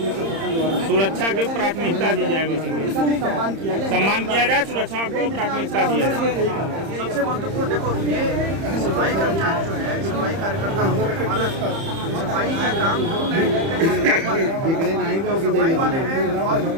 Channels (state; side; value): late; left; 30 ms